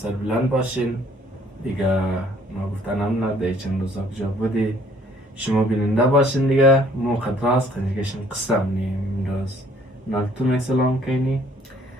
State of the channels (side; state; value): both; normal; correlation 0.60